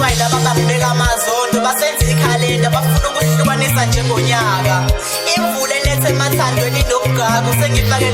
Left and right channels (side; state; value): both; identical; correlation 1.00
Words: yilaba babeka amazondo basenza ikhalenda bafuna ukuhlukanisa njengonyaka. Imvula elethe emathandweni nobugagu